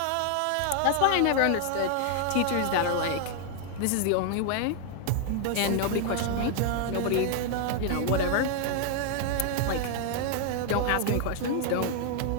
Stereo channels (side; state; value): both; different; correlation 0.00